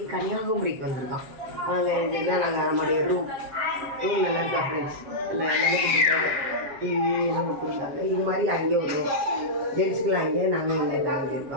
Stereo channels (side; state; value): left; late; 7.4 ms